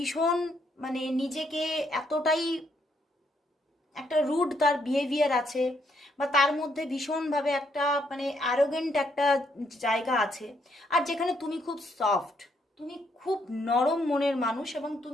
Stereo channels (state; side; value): normal; both; correlation 0.73